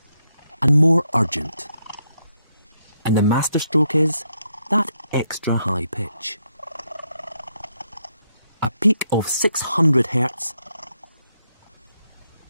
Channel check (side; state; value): both; inverted; correlation -0.78